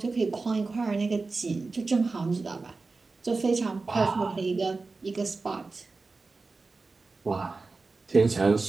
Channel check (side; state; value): left; quieter; 3.9 dB